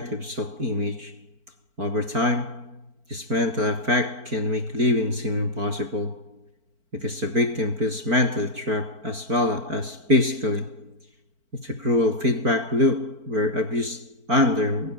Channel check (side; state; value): left; late; 4.5 ms